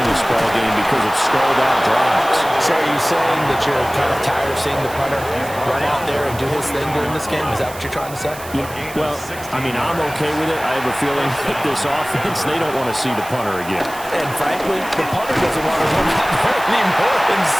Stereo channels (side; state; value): right; noise; hiss, 16 dB below the sound